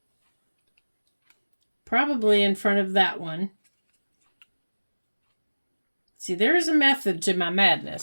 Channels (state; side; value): inverted; both; correlation -1.00